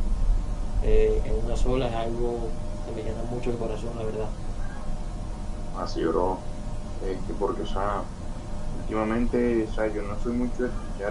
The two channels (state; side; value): identical; both; correlation 1.00